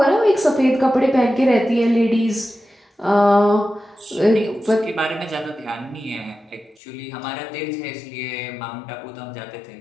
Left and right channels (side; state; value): right; drops out; at 6.8 s